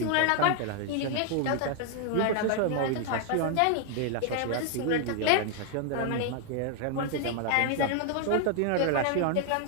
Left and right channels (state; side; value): different; both; correlation 0.00